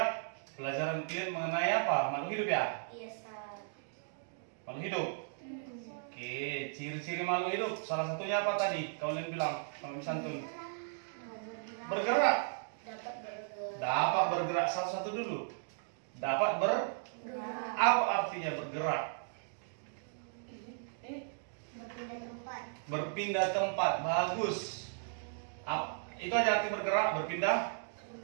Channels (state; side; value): silent; left; digital silence